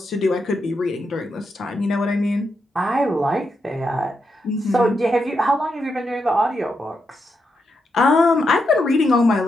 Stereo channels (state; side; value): normal; both; correlation 0.84